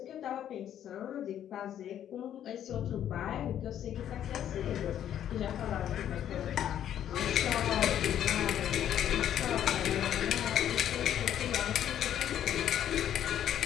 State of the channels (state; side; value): quieter; right; 10.5 dB